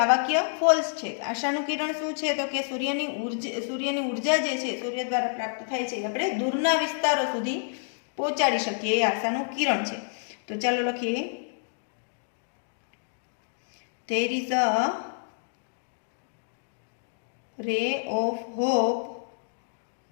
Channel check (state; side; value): silent; right; digital silence